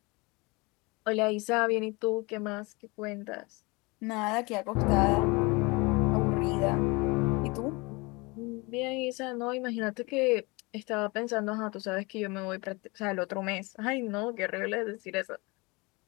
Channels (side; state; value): right; quieter; 26.2 dB